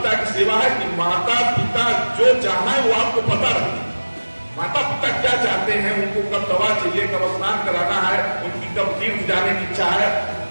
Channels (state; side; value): inverted; both; correlation -1.00